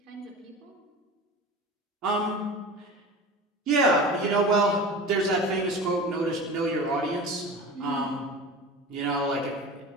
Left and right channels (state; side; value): normal; both; correlation 0.33